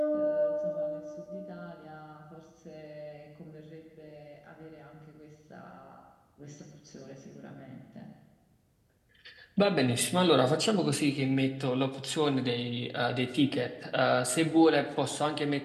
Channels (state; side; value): identical; both; correlation 1.00